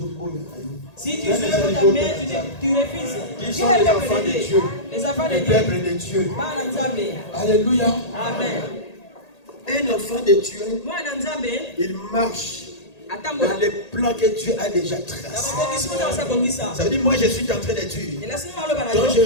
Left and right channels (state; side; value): late; right; 1.8 ms